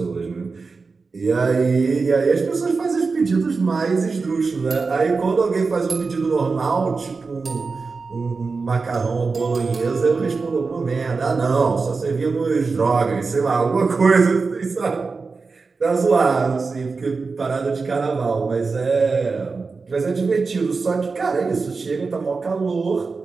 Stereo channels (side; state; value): left; quieter; 4.4 dB